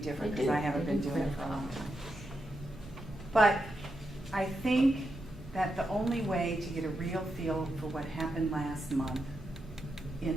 because I haven't been doing it for a long time. But I think that the only way to get a real feel for what happened last month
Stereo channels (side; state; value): both; normal; correlation 0.85